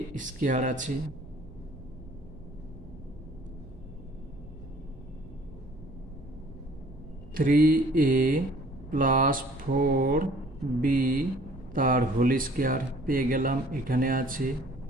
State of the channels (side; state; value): right; noise; hum, 20 dB below the sound